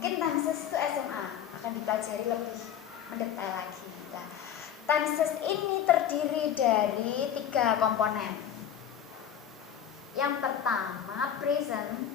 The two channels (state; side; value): quieter; right; 9.3 dB